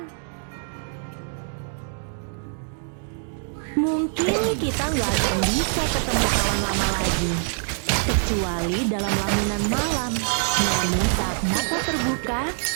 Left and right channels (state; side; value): silent; left; digital silence